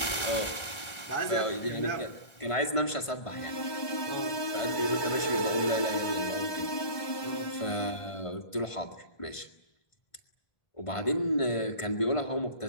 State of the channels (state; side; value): late; right; 1.5 ms